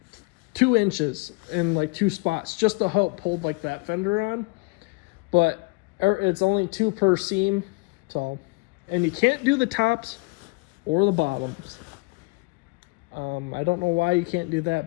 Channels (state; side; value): quieter; right; 28.0 dB